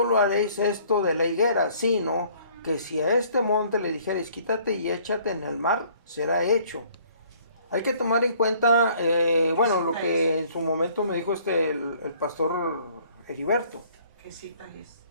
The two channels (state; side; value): inverted; both; correlation -0.58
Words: haréis esto de la higuera, sino que si a este monte le dijereis, quítate y échate en el mar, será hecho. Hay que tomar en cuenta, lo que en su momento me dijo el pastor Heriberto. ¿Qué cita es?